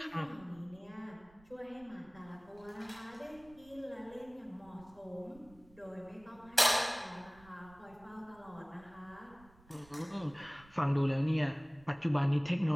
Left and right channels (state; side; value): noise; right; rumble, 25 dB below the sound